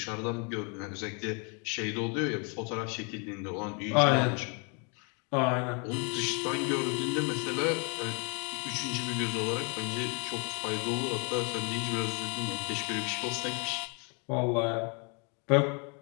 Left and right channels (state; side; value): quieter; right; 35.3 dB